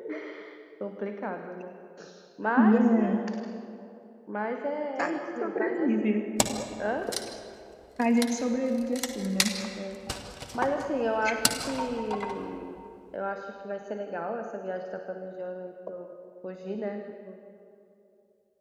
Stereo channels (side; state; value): both; identical; correlation 1.00